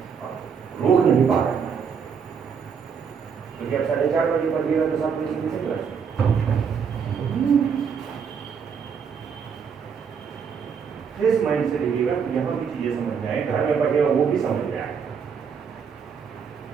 रोक नहीं पा रहे हैं, क्योंकि आप 4:30 बजे पढ़िएगा तो 7 बजे किसे क्लास। फ्रेश माइंड से लिखिएगा, यहाँ भी चीजें समझ में आए, घर में पढ़िएगा वो भी समझ में आए।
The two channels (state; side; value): quieter; left; 6.6 dB